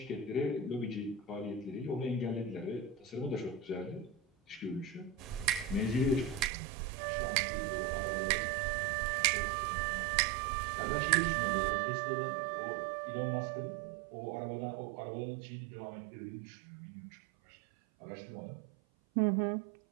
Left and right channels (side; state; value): left; drops out; at 6.5 s